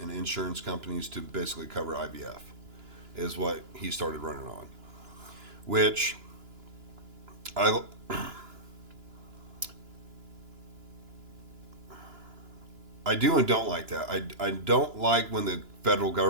and insurance companies to basically cover IVF. is what he started running on, which I do and don't like that. I don't like when the federal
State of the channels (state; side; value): late; left; 2.9 ms